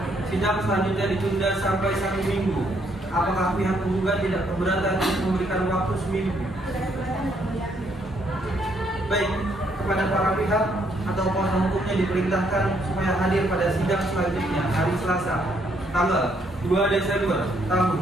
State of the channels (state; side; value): normal; both; correlation 0.71